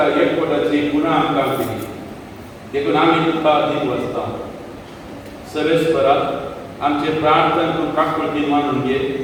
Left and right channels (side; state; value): both; identical; correlation 1.00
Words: एकवटाची पुन्हा आमकां दिली देखून आमी तुका दीन वचता सर्वेस्परा आमचे प्रार्थना तूं काकूळटी मानून घे